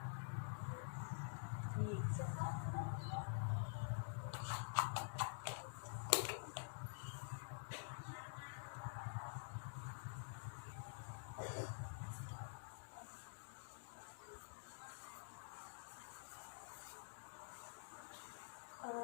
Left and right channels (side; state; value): right; silent; digital silence